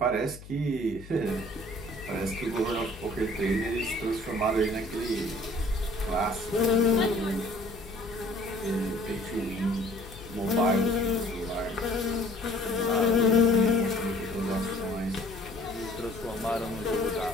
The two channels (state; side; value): noise; left; hum, 16 dB below the sound